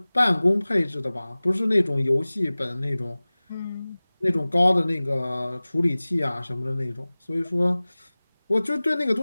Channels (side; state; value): both; inverted; correlation -0.99